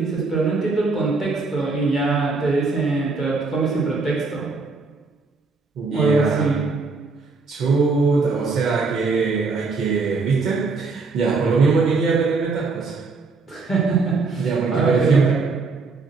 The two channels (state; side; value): quieter; left; 4.1 dB